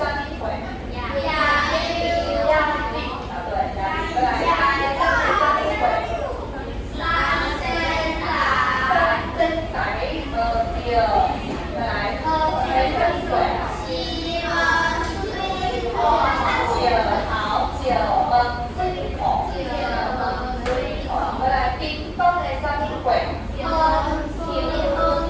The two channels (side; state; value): both; identical; correlation 1.00